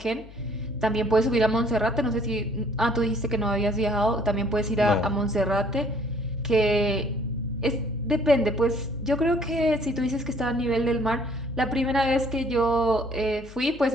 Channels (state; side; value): noise; left; hum, 19 dB below the sound